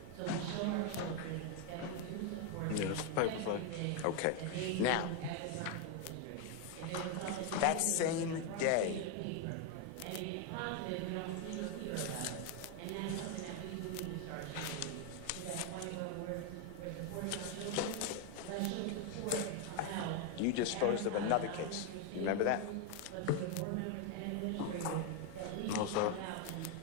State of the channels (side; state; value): both; different; correlation 0.01